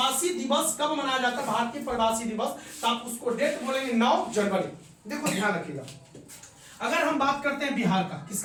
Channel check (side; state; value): both; identical; correlation 1.00